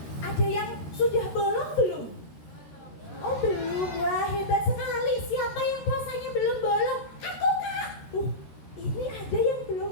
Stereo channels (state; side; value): late; right; 13 ms